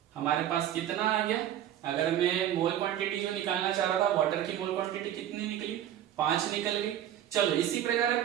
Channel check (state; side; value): quieter; left; 11.2 dB